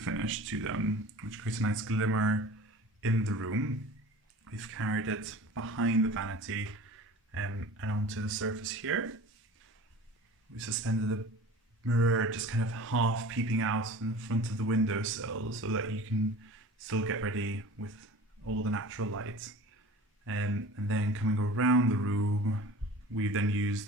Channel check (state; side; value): normal; both; correlation 0.39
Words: to them, which creates a nice glimmer in the room. We've carried it behind the vanity and onto the surface here. We suspended a mirror just kind of half peeping out in front of the windowsill so that you can still get ready with all the natural light. And then coming around the room, we've then used